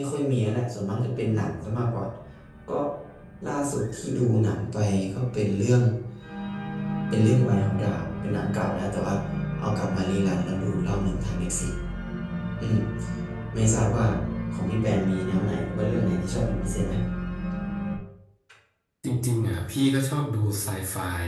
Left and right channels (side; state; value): both; identical; correlation 1.00